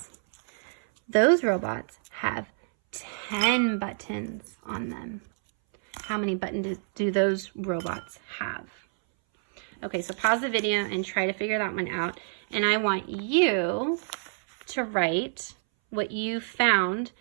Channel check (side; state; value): left; silent; 59 dB below the other